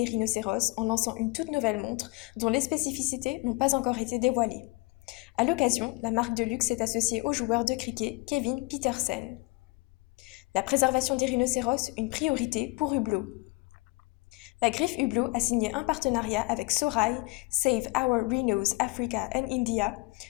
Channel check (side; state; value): right; quieter; 26.2 dB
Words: rhinocéros en lançant une toute nouvelle montre dont les spécificités n'ont pas encore été dévoilées. À l'occasion, la marque de luxe est associée au joueur de cricket Kevin Petersen. La préservation des rhinocéros, une priorité pour Hublot. La griffe Hublot a signé un partenariat avec Sorai, Save Our Rhinos Africa and India,